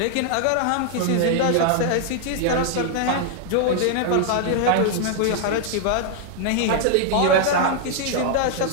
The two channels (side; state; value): both; different; correlation 0.00